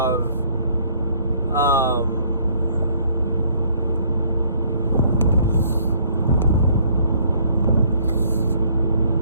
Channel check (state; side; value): inverted; both; correlation -0.62